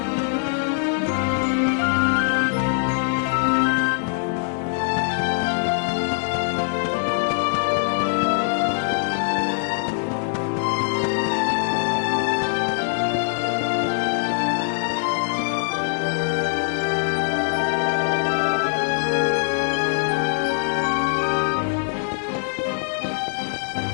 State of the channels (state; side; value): silent; right; digital silence